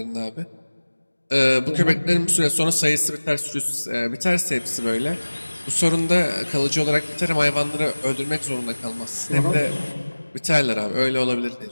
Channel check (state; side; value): inverted; both; correlation -1.00